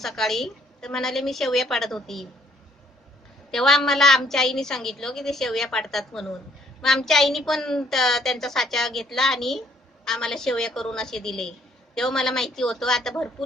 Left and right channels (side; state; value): both; normal; correlation 0.66